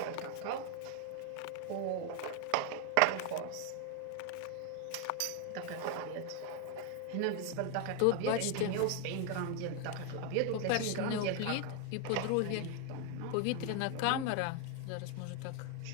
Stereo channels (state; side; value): different; both; correlation 0.01